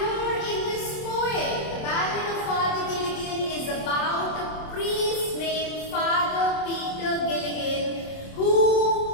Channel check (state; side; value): late; right; 27 ms